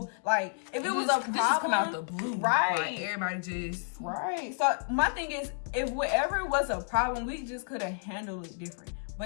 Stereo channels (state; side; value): silent; right; 57 dB below the other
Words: Like, if it was a problem, this just come out the blue, right? Like, everybody just right. So my thing is, if whatever was a problem, we just could have handled it different.